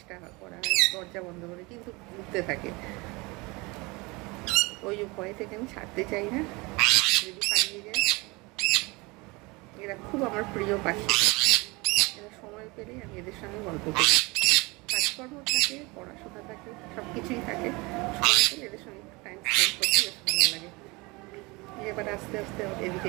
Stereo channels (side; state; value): left; quieter; 25.1 dB